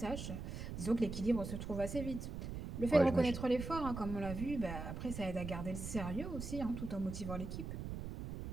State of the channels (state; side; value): noise; right; rumble, 6 dB below the sound